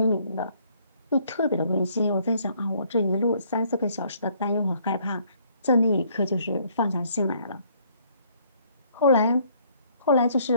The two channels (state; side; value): inverted; both; correlation -0.64